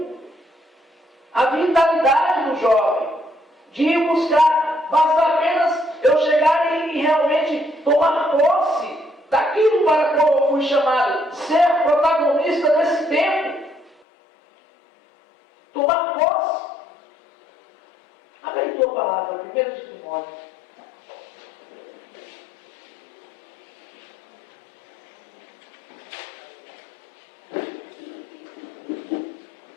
a vitalidade do jovem, de ir buscar, basta apenas eu chegar e realmente tomar posse daquilo para qual eu fui chamado, ser protagonista desse tempo. Tomar posse. Abre aí tua palavra, 1 de Timóteo.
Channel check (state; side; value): drops out; right; at 14.0 s